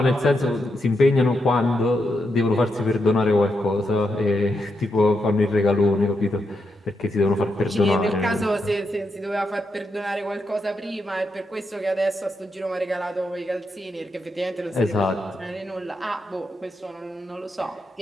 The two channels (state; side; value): normal; both; correlation 0.83